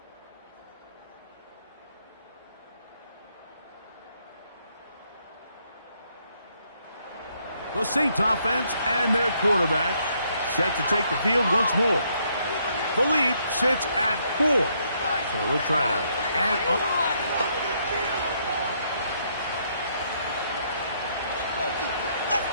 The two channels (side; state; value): both; inverted; correlation -0.72